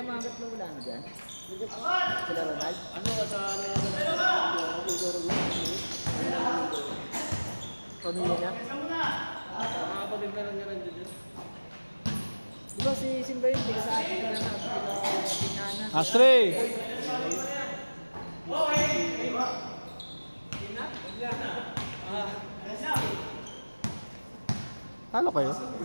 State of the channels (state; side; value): inverted; both; correlation -1.00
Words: mga gatlo wala na dyan. Sila Ronald. Ano ka sa Pamilya niya. mga kapatid na lang niya rin dyan. Di ba si Simba yun? Tiga sa atin ka na sa Piñana. Last three. Talo kayo?